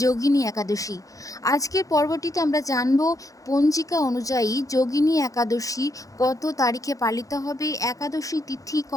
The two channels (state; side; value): late; right; 0.17 ms